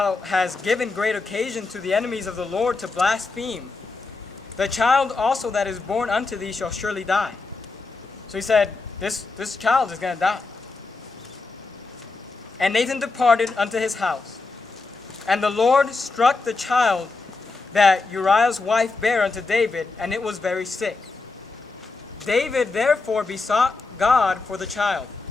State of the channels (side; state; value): right; quieter; 3.9 dB